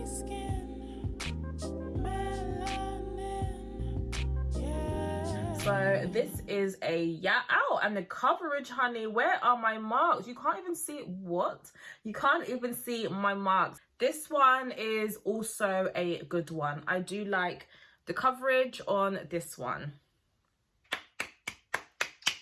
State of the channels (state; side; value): identical; both; correlation 1.00